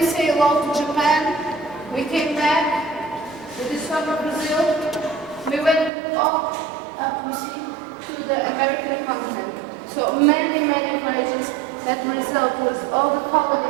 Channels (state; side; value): drops out; left; at 5.9 s